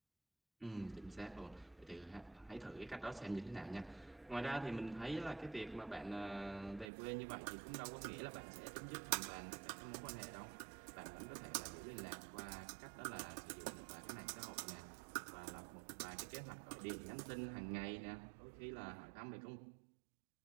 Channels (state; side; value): drops out; left; at 6.9 s